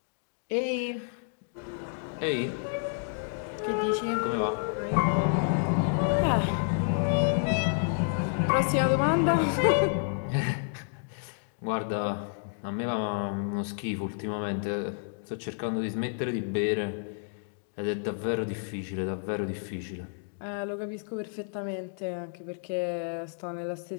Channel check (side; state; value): right; silent; digital silence